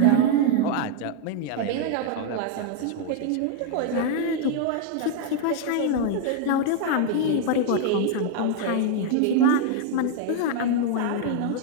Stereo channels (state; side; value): different; both; correlation 0.00